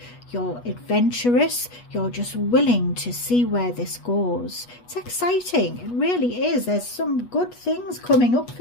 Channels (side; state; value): right; late; 8.2 ms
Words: You're adventurous. You're just willing to see where this goes. It's exciting. It really is. There's some good things coming up